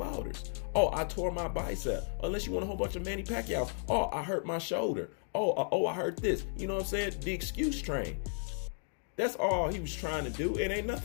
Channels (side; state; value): right; silent; 55 dB below the other